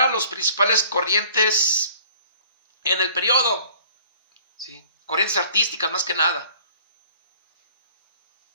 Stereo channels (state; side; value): inverted; both; correlation -0.52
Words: los principales corrientes en el periodo. ¿Sí? Corrientes artísticas más que nada.